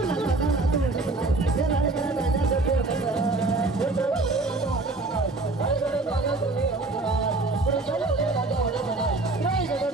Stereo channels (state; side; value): quieter; left; 3.2 dB